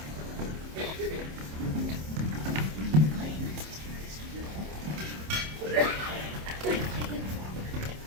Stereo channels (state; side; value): late; left; 27 ms